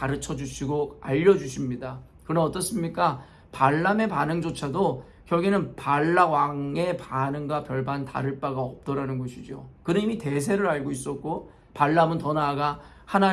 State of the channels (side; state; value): both; identical; correlation 1.00